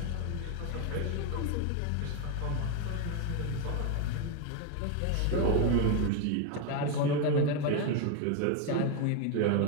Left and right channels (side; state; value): both; different; correlation 0.01